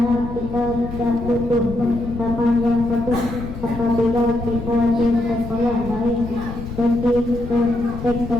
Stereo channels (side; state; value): left; noise; rumble, 10 dB below the sound